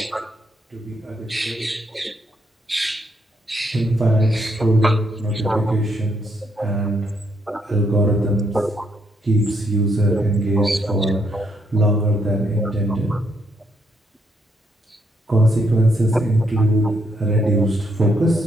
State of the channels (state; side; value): normal; both; correlation 0.75